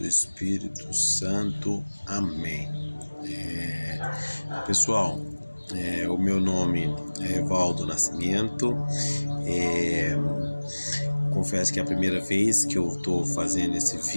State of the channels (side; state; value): both; inverted; correlation -1.00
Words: Espírito Santo. Amém. Pessoal, o meu nome é Evaldo Nascimento. É, confesso que é a primeira vez que eu estou fazendo esse